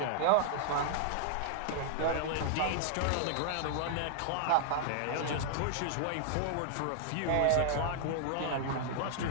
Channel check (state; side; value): different; both; correlation -0.01